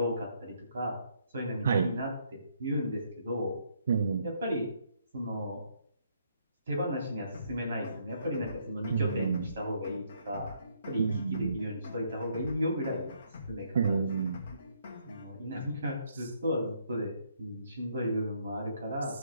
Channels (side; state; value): both; inverted; correlation -0.71